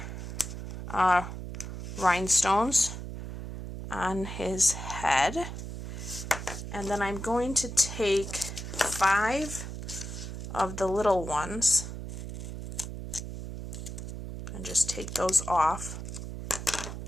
rhinestones on his head, and then I'm going to take 5 of the little ones and just take those off.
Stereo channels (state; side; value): noise; right; hum, 7 dB below the sound